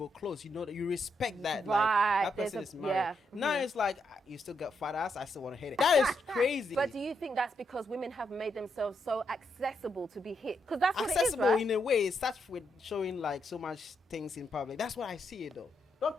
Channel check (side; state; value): both; normal; correlation 0.80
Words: close. You know that you respect that. Right. Like that person is married. Yeah. Now it's like you still got fat ass. I still want to hit it. That is crazy. But do you think that's because women have made themselves so accessible to be hit? Because that's what accessible it is, right? in a way. It starts with showing like so much things in public. That's what I see it though. Don't